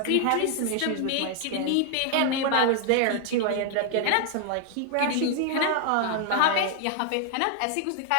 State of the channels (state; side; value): different; both; correlation 0.00